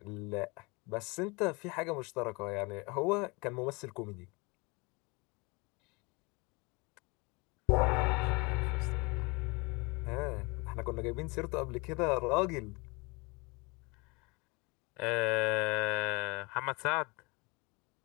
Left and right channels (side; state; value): right; quieter; 27.3 dB